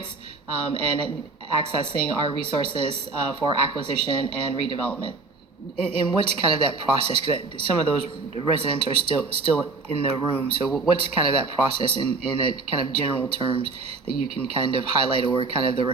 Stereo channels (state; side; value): quieter; left; 3.8 dB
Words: and accessing our resources for acquisition and redevelopment. And what's kind of that process? Because some of those residents are still in the room. So what's kind of that process in a kind of general terms that you can kind of highlight, or kind of the